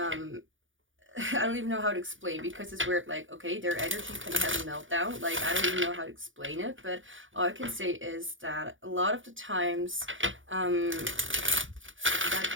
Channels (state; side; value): late; left; 0.57 ms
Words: don't even know how to explain, because it's weird. Like, okay, their energy can have a meltdown. Like, I don't even know how to explain it, but all I can say is that a lot of the times